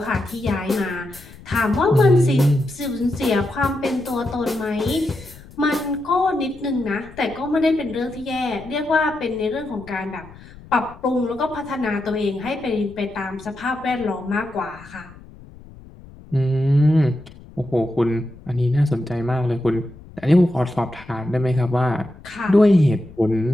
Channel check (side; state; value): left; noise; rumble, 20 dB below the sound